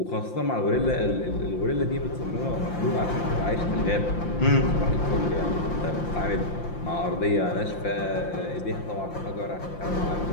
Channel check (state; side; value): late; right; 5.8 ms